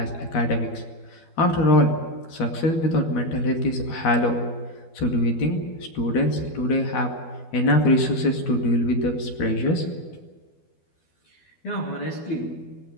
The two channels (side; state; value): right; late; 12 ms